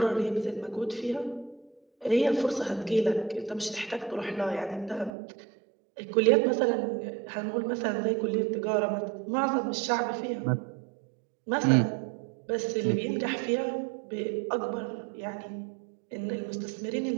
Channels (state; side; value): drops out; left; at 5.1 s